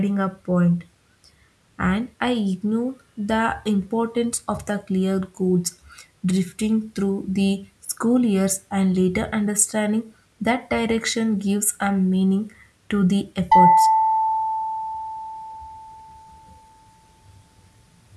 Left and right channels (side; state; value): both; identical; correlation 1.00